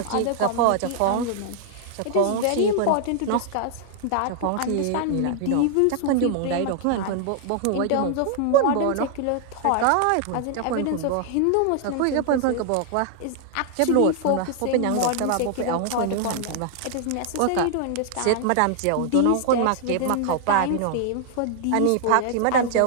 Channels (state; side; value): different; both; correlation 0.00